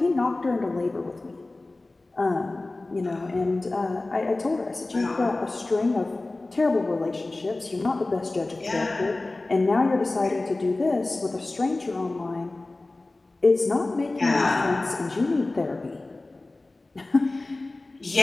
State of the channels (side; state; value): right; quieter; 3.0 dB